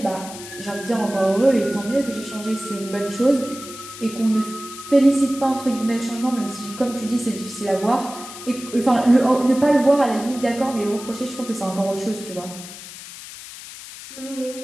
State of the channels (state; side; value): noise; left; hiss, 14 dB below the sound